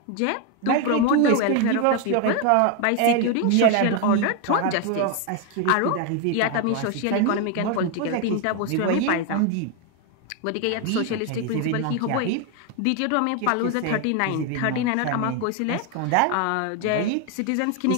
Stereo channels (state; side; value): different; both; correlation 0.01